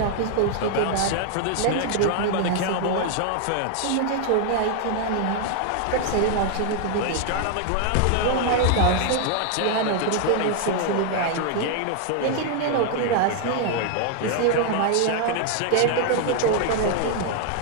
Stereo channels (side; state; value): both; different; correlation 0.00